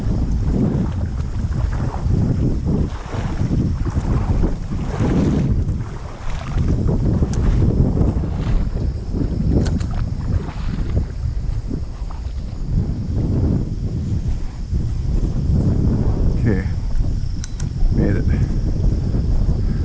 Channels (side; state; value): both; identical; correlation 1.00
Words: Okay, made it.